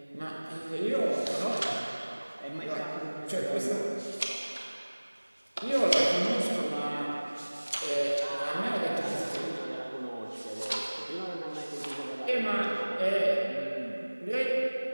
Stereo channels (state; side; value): inverted; both; correlation -1.00